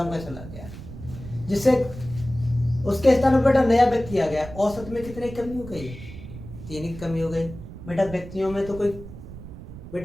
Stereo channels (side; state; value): right; noise; rumble, 13 dB below the sound